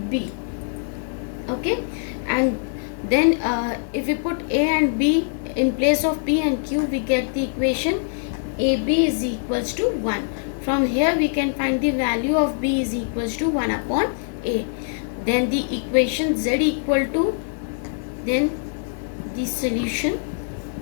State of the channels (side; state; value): right; silent; 63 dB below the other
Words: b. Okay, and then if we put a and b in place of p and q, we get the equation ab is equals to 1. From here we can find the value of b is equals to 1 upon a. Then the equation z equal to, then the solution